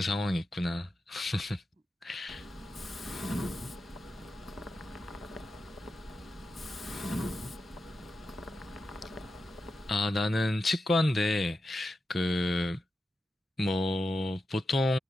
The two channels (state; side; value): normal; both; correlation 0.89